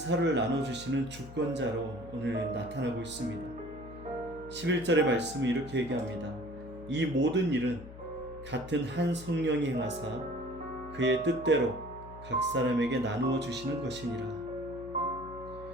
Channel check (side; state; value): left; noise; hum, 15 dB below the sound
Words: 나눠주시는 주권자로 오늘 나타나고 있습니다. 11절의 말씀은 이렇게 얘기합니다. 이 모든 일은 같은 한 성령이 행하사 그의 뜻대로 각 사람에게 나누어 주시는 것이니라.